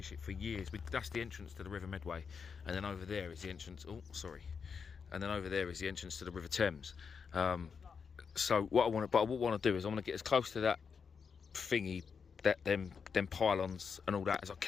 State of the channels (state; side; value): quieter; right; 6.0 dB